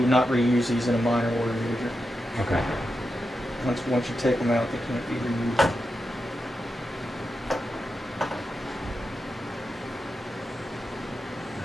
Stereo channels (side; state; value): both; normal; correlation 0.88